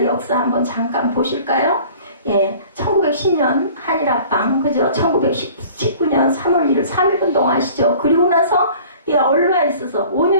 역사 한번 잠깐 보실까요? 예, 1910년 한일합방, 그죠? 1919년 3월 1일 3.1운동 아시죠? 그리고 나서, 예, 얼마 있어서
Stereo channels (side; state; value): both; inverted; correlation -0.48